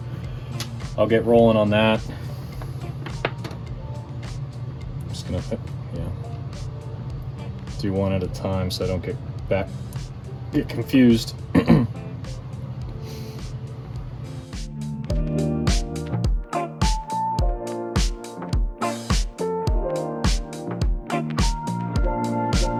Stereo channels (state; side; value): identical; both; correlation 1.00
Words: I'll get rolling on that. I'm just gonna do one at a time so I don't get confused.